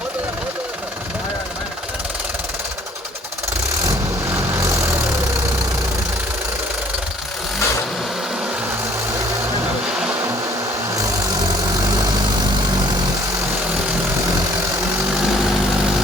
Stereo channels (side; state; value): both; normal; correlation 0.58